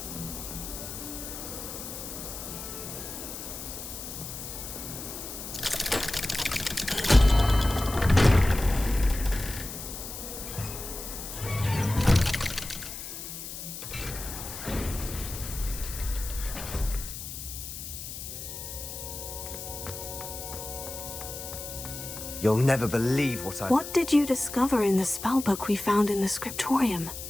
You'll never believe what I... What did you discover in the spellbook we found in the scriptorium?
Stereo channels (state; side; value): noise; left; hiss, 9 dB below the sound